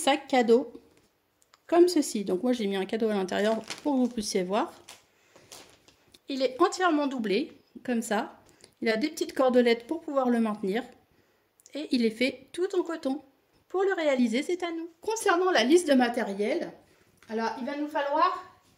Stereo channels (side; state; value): both; identical; correlation 1.00